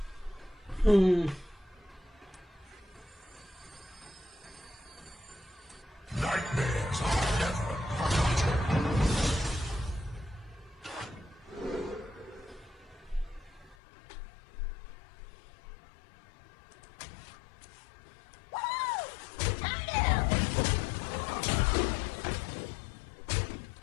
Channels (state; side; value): drops out; right; at 13.8 s